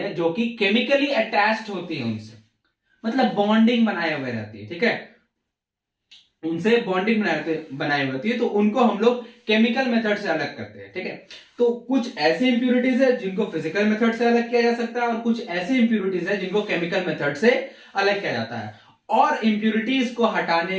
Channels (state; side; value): identical; both; correlation 1.00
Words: जो कि केमिकली अटैच्ड होती है उनसे, मतलब बॉन्डिंग बनाए हुए रहती है, ठीक है। उनसे बॉन्डिंग बनाई होती है तो उनको हम लोग केमिकल मेथड से अलग करते हैं, ठीक है। तो कुछ ऐसी इंप्योरिटीज है जिनको फिजिकल मेथड से अलग किया जा सकता है, और कुछ ऐसी इंप्योरिटीज है जिनको केमिकल मेथड से अलग किया जाता है। और इंप्योरिटीज को